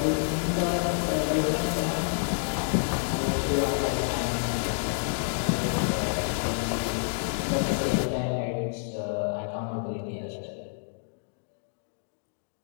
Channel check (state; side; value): silent; right; digital silence